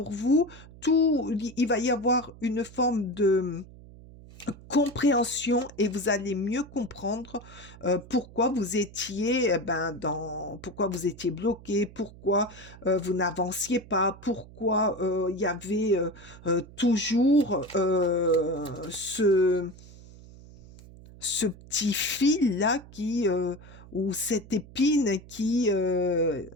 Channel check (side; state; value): right; noise; hum, 19 dB below the sound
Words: vous. Il va y avoir une forme de compréhension et vous allez mieux comprendre pourquoi vous étiez pourquoi vous étiez bloqué, pourquoi vous n'avanciez pas, pourquoi il y avait toujours ce petit fil là ou cette épine qui